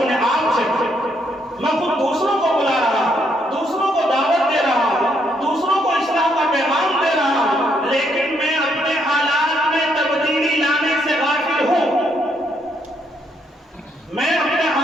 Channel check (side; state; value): both; normal; correlation 0.73